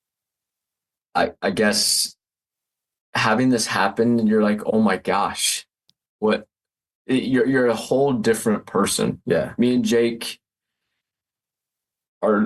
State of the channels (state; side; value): identical; both; correlation 1.00